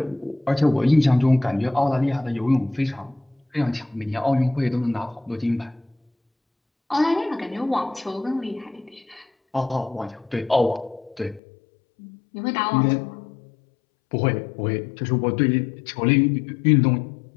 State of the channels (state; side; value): drops out; right; at 11.4 s